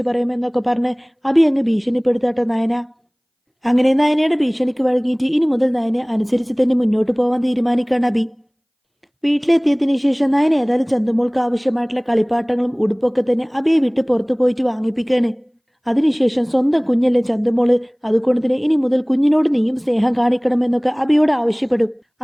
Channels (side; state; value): both; identical; correlation 1.00